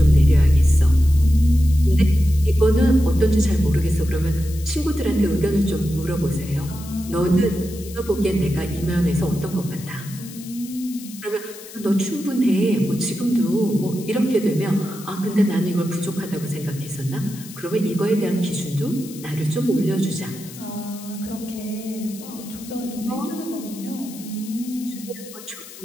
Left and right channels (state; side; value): noise; left; hiss, 16 dB below the sound